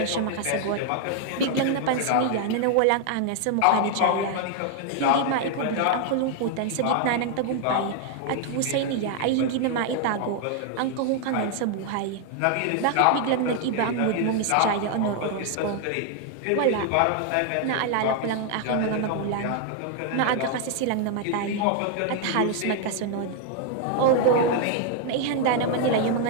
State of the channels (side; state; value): both; different; correlation 0.00